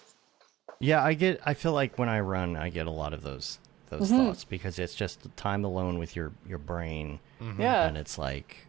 Yeah, I feel like when I run, I get a lot of those thoughts because it's just time alone with your brain. Yeah. And it's like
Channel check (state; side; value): quieter; left; 15.4 dB